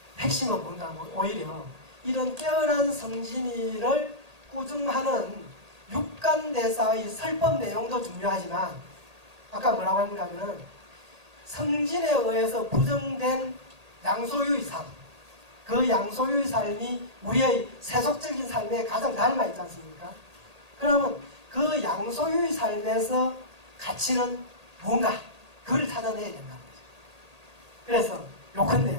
핵심은 뭔가 하면 오히려 이런 깨어난 성진이를 꾸중하는 육간대사의 설법 내용도 중요하지만 아까 뭐라고 하는가 하면은 성진에 의해서 부정된 양소유의 삶 그 양소유의 삶이 우리의 세속적인 삶에 가장 닮아 있지 않습니까? 그러면 그 양소유의 삶에서 가치는 뭔가 그걸 찾아내야 된다는 거죠. 그래서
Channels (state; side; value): late; left; 1.8 ms